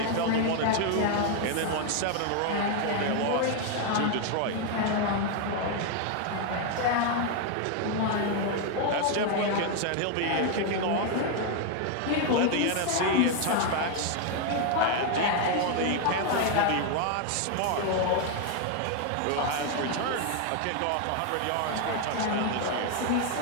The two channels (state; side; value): different; both; correlation 0.01